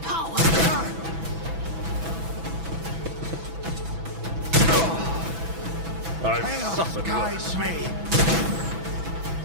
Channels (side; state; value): left; late; 6.1 ms